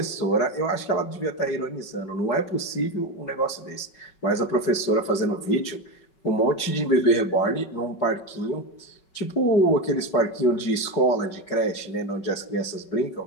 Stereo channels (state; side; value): late; right; 5.3 ms